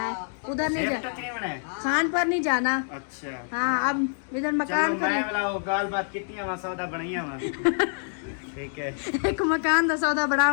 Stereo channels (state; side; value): silent; right; digital silence